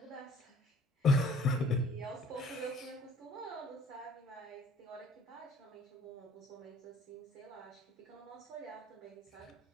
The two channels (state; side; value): normal; both; correlation 0.54